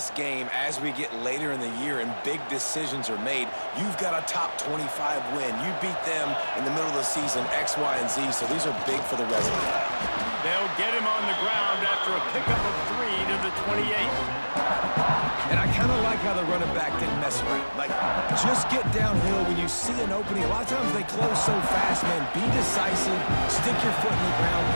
game as we get later in the year and big decisions are made. You've got a top 25 win. You beat them in the middle of the season, X, Y, and Z, so these are big for the resume. They'll get him on the ground after a pickup of 3 to the 28. And I kind of like how the running back didn't mess around. Like, just get downhill when you see an opening. A lot of times they close so fast, man. Be decisive, stick your foot in the ground,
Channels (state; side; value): inverted; both; correlation -1.00